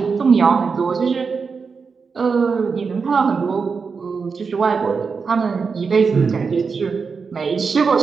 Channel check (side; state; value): left; quieter; 5.2 dB